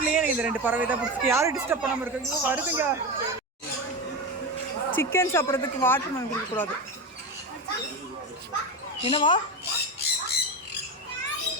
எனக்கு இந்த 2 பறவை தான் பிடிச்சிருக்கு. யாரும் டிஸ்டர்ப் பண்ணாம இருக்காங்க. வருதுங்க. சிக்கன் சாப்பிட்றதுக்கு வாட்டர் மெலன் கொடுக்கக்கூடாது. என்னவா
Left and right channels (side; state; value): both; normal; correlation 0.19